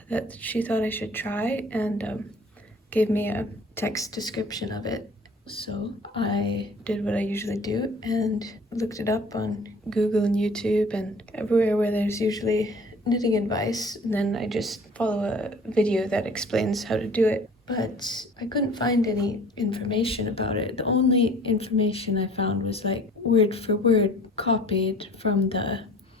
that she thought I should try, and gave me a text description of it. So I did what I usually do and looked it up on Google and YouTube and everywhere where there's usually knitting advice, and then I just follow a video that explains how to do it. But I couldn't find any information about it. The only information I found was like word for word copied from the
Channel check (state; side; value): normal; both; correlation 0.48